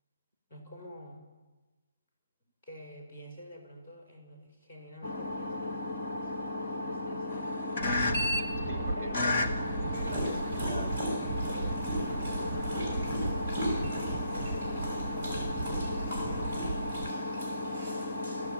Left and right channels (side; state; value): both; inverted; correlation -0.70